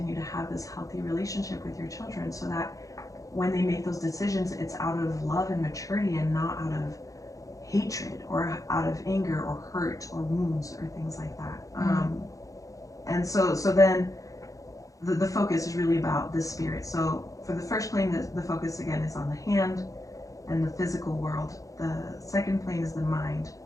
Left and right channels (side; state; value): right; late; 0.16 ms